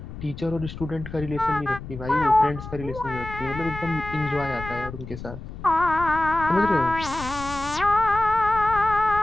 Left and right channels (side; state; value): left; noise; rumble, 11 dB below the sound